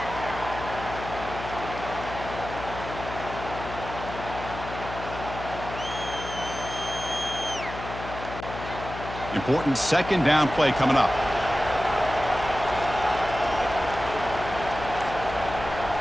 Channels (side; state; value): left; noise; hum, 10 dB below the sound